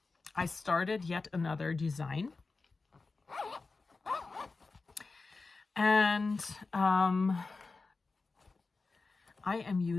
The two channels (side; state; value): right; quieter; 3.9 dB